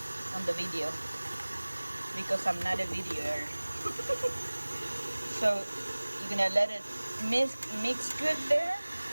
on the video, because I'm not a videoer. So you're gonna let it mix good there.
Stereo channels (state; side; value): inverted; both; correlation -1.00